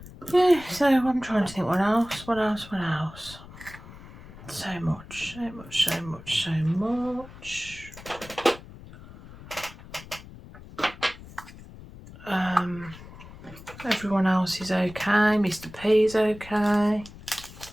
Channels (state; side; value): noise; left; rumble, 17 dB below the sound